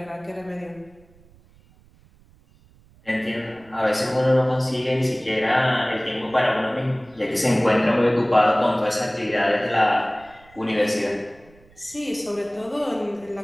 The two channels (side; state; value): right; noise; rumble, 28 dB below the sound